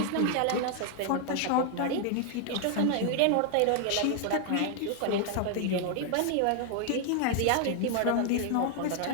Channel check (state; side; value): different; both; correlation 0.00